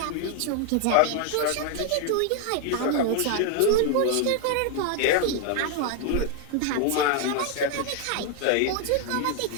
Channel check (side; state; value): both; different; correlation 0.00